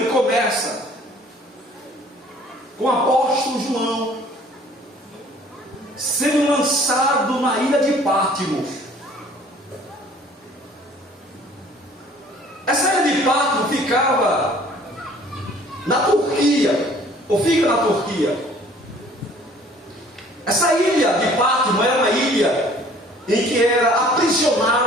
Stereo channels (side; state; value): both; normal; correlation 0.54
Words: começa com o apóstolo João sendo lançado na ilha de Patmos. Essa ilha de Patmos ficava na Turquia, ou fica na Turquia. Essa ilha de Patmos era uma ilha em que era